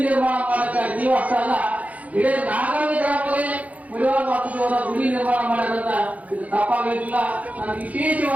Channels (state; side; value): late; left; 0.071 ms